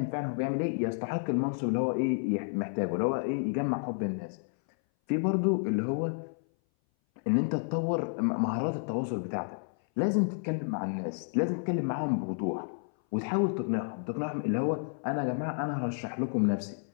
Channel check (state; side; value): silent; right; 57 dB below the other